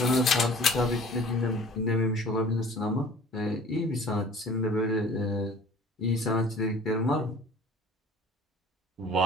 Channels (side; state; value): both; normal; correlation 0.47